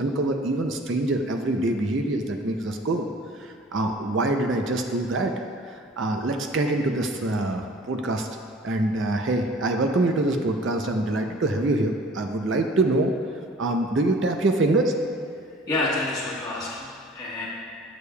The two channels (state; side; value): normal; both; correlation 0.49